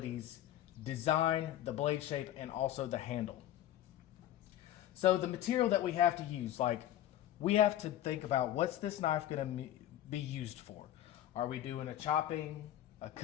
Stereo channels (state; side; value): quieter; right; 12.5 dB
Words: design, the blade shape, and also the handle. So the material that we have to use, like we have to think about what's this knife going to be used for. Are we doing a chopping, a